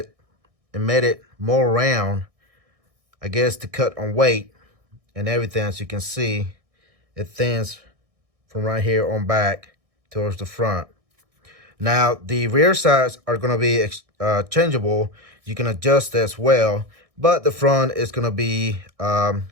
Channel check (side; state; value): left; late; 1.6 ms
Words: and made it more round, I guess, to cut on weight and everything. As you can see, it thins from right here on back towards the front. Now, the rear sides are going to be changeable. You can adjust as well, but the front is going to be,